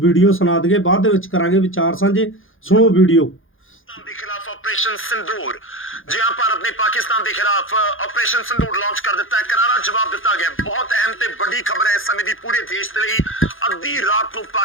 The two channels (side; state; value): right; late; 0.59 ms